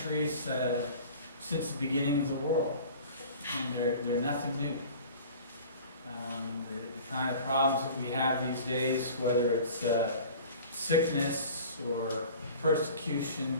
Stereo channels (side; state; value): both; inverted; correlation -0.42